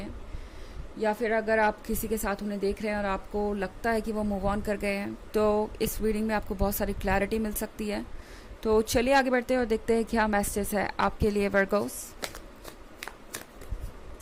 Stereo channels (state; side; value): identical; both; correlation 1.00